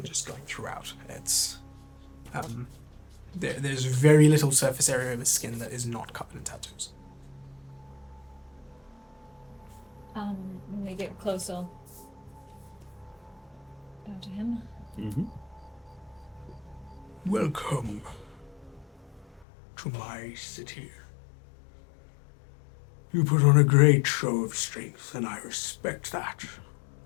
just going throughout, it's there's very little surface area of his skin that is not covered in tattoos. When we get closer, bow to him. Mm-hmm. Welcome to my city. You put on a great show of strength, and I respect that.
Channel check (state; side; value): drops out; right; at 19.5 s